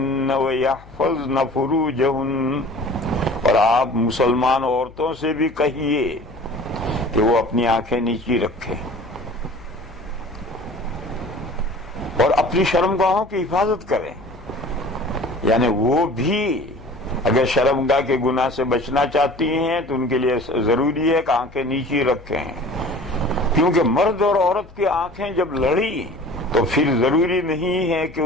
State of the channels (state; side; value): noise; left; hum, 22 dB below the sound